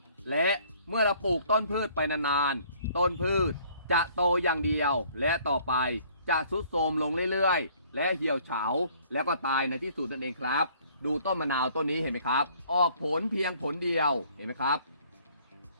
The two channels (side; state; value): both; inverted; correlation -0.58